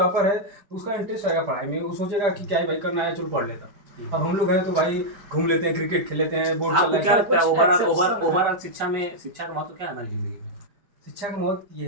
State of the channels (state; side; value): late; left; 5.1 ms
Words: है तो उसका इंटरेस्ट रहेगा पढ़ाई में, वो सोचेगा कि क्या ही भाई करना है, चलो पढ़ लेता। अब हम लोग हैं तो भाई घूम लेते हैं, क्रिकेट खेल लेते हैं, बोर्ड चल आपको रहा क्या है। लगता है कुछ ओवरऑल शिक्षा का महत्व क्या है हमारी जिंदगी में? शिक्षा का महत्व